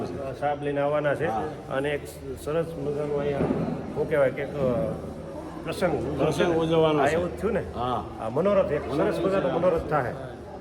છે. સાહેબ લઈને આવવાના છે. અને એક સરસ મજાનું અહીંયા શું કહેવાય કે પ્રસંગ ઉજવવાનો હા, છે. એવું જ થયું ને? હા, આ મનોરથ, એક સરસ મજાનો મનોરથ થાય.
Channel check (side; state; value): both; identical; correlation 1.00